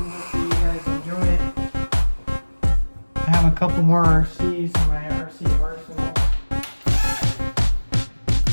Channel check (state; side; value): inverted; both; correlation -1.00